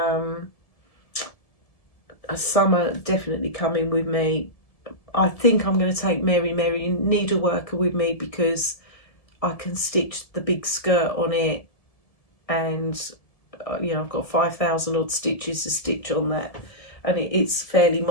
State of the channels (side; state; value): right; late; 1.7 ms